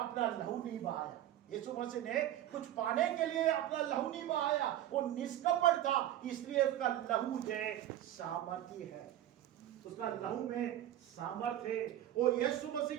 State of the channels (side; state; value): left; quieter; 12.6 dB